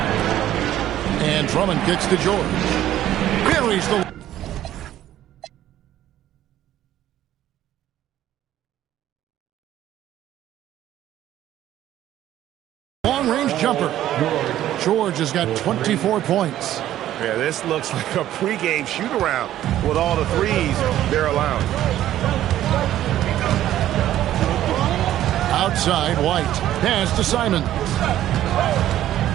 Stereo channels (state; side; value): quieter; left; 12.8 dB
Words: And Drummond kicks to George. Buries the long-range jumper. George has got 24 points. Yeah, this looks like a pregame shoot-around with all the threes they're allowing. Outside, White. Pass to Simons.